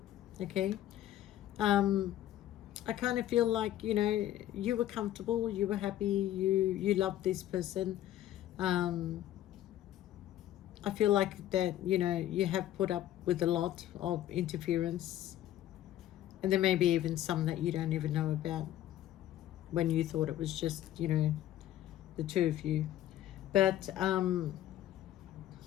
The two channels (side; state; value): right; quieter; 12.9 dB